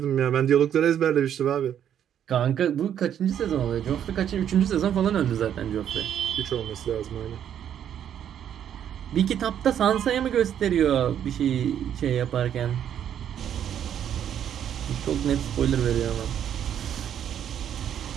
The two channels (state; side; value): quieter; left; 9.6 dB